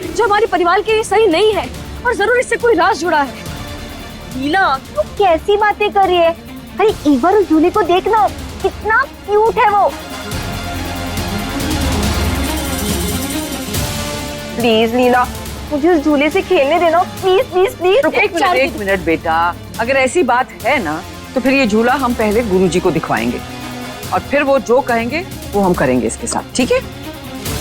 जो हमारे परिवार के लिए सही नहीं है, और जरूर इससे कोई राज जुड़ा है। हीला, तू कैसी बातें कर रही है? अरे एक बार उस झूले को देखना, कितना क्यूट है वो। प्लीज लीला, मुझे उस झूले से खेलने देना, प्लीज प्लीज प्लीज। एक मिनट बेटा, अगर ऐसी बात है ना तो फिर ये झूला हम पहले गुरुजी को दिखवाएंगे, और फिर वो जो कहेंगे वो हम करेंगे इसके साथ, ठीक है?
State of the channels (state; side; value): identical; both; correlation 1.00